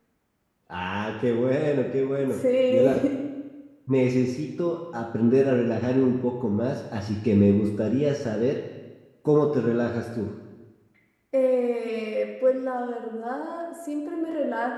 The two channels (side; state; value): both; identical; correlation 1.00